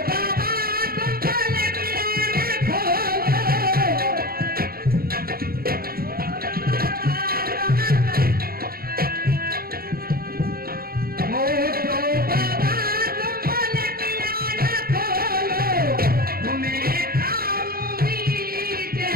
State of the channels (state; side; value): late; left; 0.44 ms